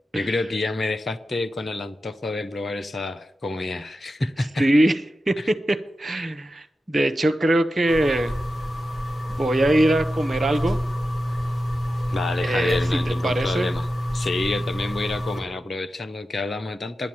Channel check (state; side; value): normal; both; correlation 0.91